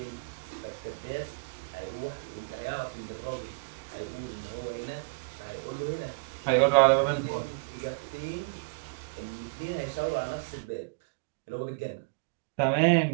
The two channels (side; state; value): left; quieter; 37.5 dB